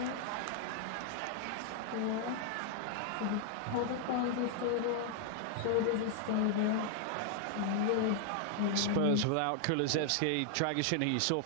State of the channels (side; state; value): both; different; correlation 0.00